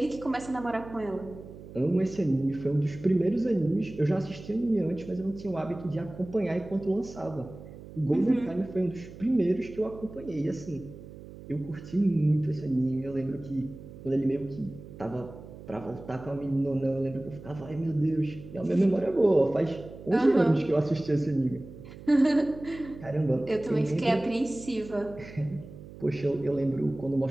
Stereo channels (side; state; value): right; noise; hum, 16 dB below the sound